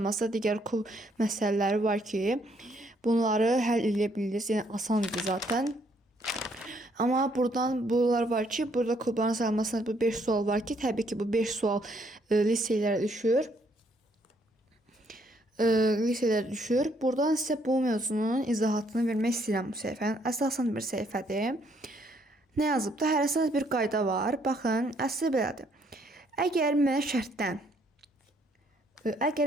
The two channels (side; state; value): both; normal; correlation 0.69